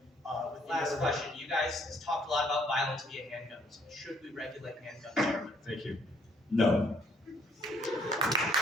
Last question. You guys talked a lot about violence via handguns. Should we regulate handguns? Thank you. No.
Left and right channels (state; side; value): normal; both; correlation 0.65